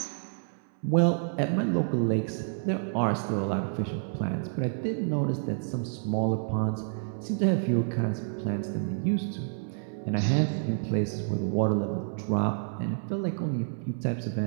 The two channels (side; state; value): left; silent; 59 dB below the other